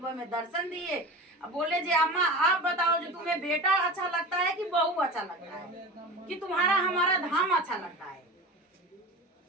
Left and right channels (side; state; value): both; normal; correlation 0.32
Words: में दर्शन दिए, बोले जी अम्मा आप बताओ जो तुम्हें बेटा अच्छा लगता है कि बहू अच्छा लगता है, कि तुम्हारा हमारा धाम अच्छा लगता है,